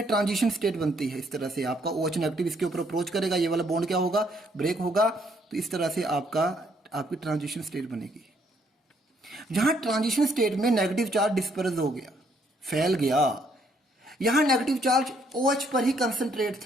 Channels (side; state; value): both; normal; correlation 0.69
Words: ट्रांजिशन स्टेट बनती है। इस तरह से आपका OH नेगेटिव इसके ऊपर अप्रोच करेगा, ये वाला बॉन्ड क्या होगा, ब्रेक होगा। तो इस तरह से आपकी ट्रांजिशन स्टेट बनेगी। जहां ट्रांजिशन स्टेट में नेगेटिव चार्ज डिस्पर्स हो गया, फैल गया, यहां नेगेटिव चार्ज OH पर ही कंसंट्रेट